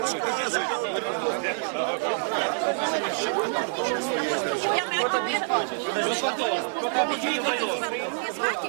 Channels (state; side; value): silent; left; digital silence